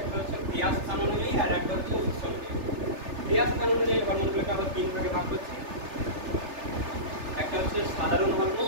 হচ্ছে ক্রিয়া স্থান অনুযায়ী আর একটা হচ্ছে উৎস অনুযায়ী। ক্রিয়া স্থান অনুযায়ী হরমোনগুলোকে আবার 3 ভাগে ভাগ করছি। একটা হচ্ছে সাধারণ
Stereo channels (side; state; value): left; late; 3.3 ms